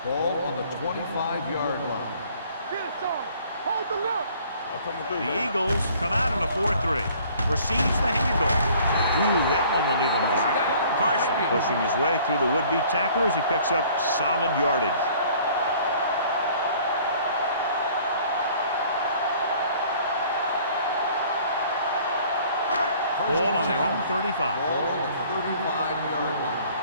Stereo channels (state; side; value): inverted; both; correlation -0.55